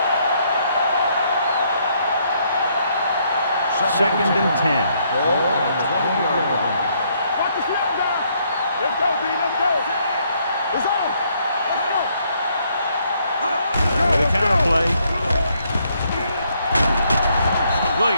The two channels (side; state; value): both; inverted; correlation -0.71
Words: Second and 10. Ball on the 20-yard line. Watch the snap down. Let's go, D. Let's go. It's on. With a counter play.